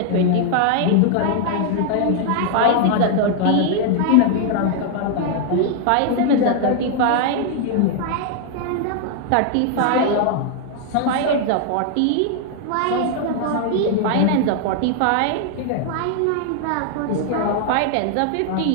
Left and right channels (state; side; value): different; both; correlation 0.00